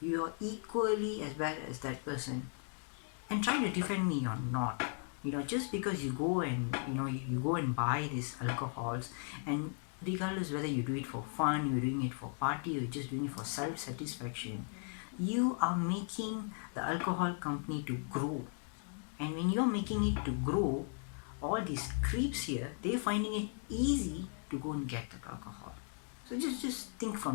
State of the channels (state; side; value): silent; right; 53 dB below the other